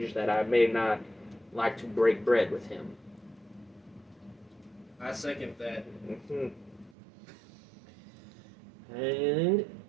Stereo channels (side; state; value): left; drops out; at 7.0 s